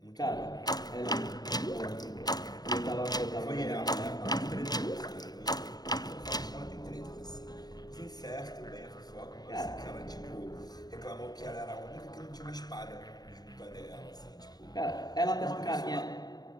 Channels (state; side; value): late; right; 0.19 ms